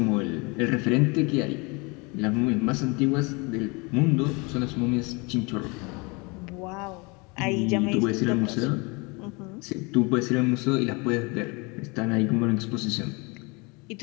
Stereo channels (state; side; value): quieter; right; 28.5 dB